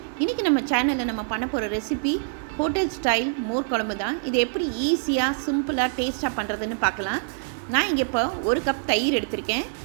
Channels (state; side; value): silent; left; 62 dB below the other